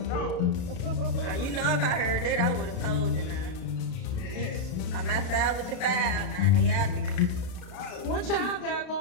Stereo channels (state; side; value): late; right; 33 ms